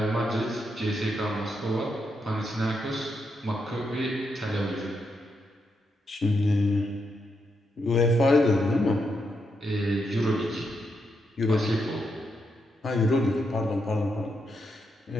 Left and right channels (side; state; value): both; normal; correlation 0.82